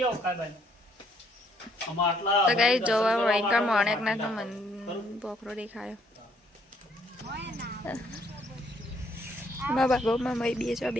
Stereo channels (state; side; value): normal; both; correlation 0.68